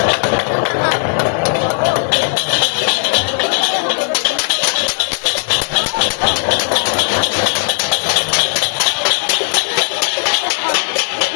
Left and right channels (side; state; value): right; silent; digital silence